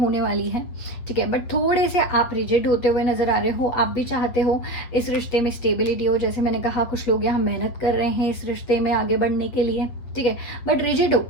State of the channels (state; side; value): late; right; 8.6 ms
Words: वाली है, ठीक है, बट थोड़े से आप रिजिड होते हुए नज़र आ रहे हो। आप भी चाहते हो इस रिश्ते में स्टेबिलिटी हो, जैसे मैंने कहा कुछ लोग यहाँ मेहनत कर रहे हैं इस रिश्ते में आगे बढ़ने के लिए, ठीक है, बट रिजिड हो,